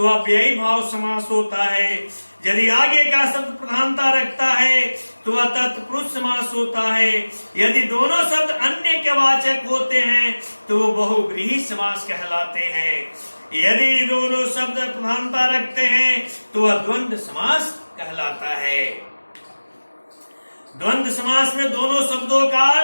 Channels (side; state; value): both; inverted; correlation -1.00